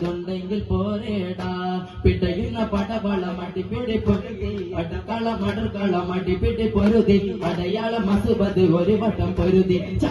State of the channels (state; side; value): identical; both; correlation 1.00